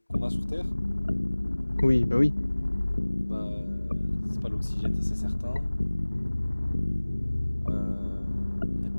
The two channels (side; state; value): both; inverted; correlation -1.00